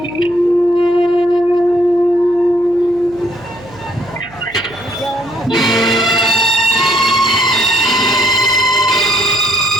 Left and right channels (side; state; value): right; noise; hum, 22 dB below the sound